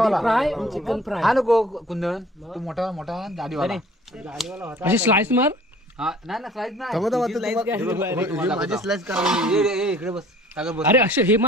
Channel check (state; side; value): normal; both; correlation 0.51